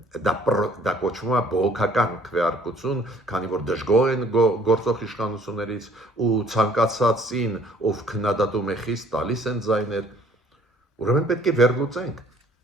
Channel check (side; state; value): both; normal; correlation 0.58